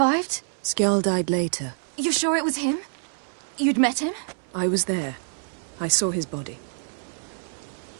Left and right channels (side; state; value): left; silent; 61 dB below the other